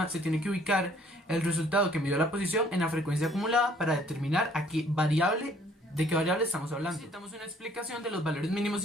se tiene que ubicar el resultado que midió la posición en la frecuencia acumulada para determinar de qué variable estamos hablando. Necesitamos una explicación de los valores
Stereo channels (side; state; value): both; normal; correlation 0.60